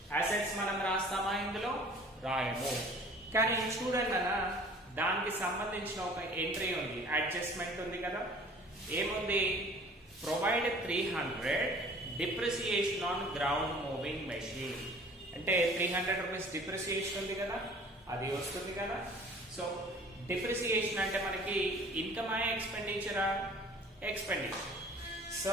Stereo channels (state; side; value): normal; both; correlation 0.49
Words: Assets మనం రాస్తామా? ఇందులో రాయము. కానీ చూడండి అన్న, దానికి సంబంధించిన ఒక ఎంట్రీ ఉంది, అడ్జస్ట్మెంట్ ఉంది కదా. ఏముంది? ప్రొవైడ్ 300 depreciation on ground moving machine. అంటే 300 రూపీస్ డిప్రిసియేషన్ ఉంది కదా, అది వస్తుంది కదా. సో డిప్రిసియేషన్ అంటే మనకి ఇన్కమ్ ఎక్స్పెండిచరా? ఎక్స్పెండిచర్. సో